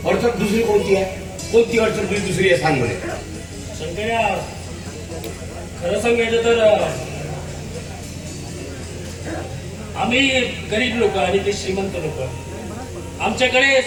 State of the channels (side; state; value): both; identical; correlation 1.00